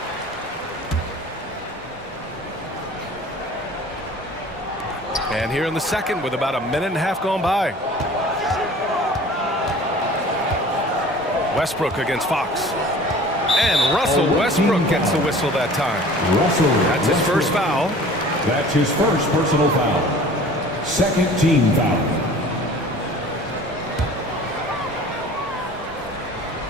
And here in the second with about a minute and a half gone by. Westbrook against Fox. And Russell Westbrook gets the whistle that time. That's his first foul. That's his first personal foul. Second team foul.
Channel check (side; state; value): both; normal; correlation 0.45